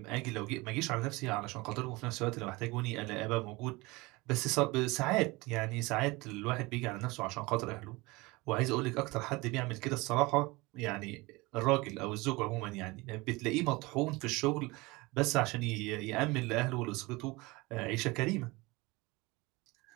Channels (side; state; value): left; quieter; 23.4 dB